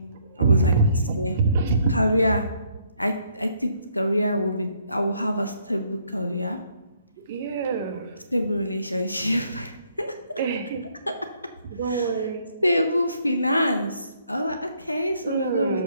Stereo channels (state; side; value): inverted; both; correlation -0.68